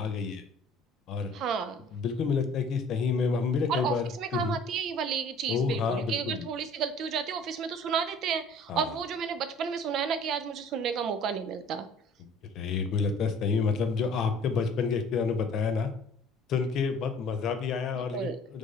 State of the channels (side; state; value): both; normal; correlation 0.50